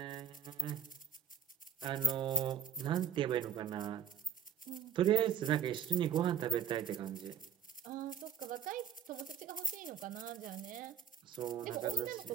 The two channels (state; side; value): quieter; left; 7.9 dB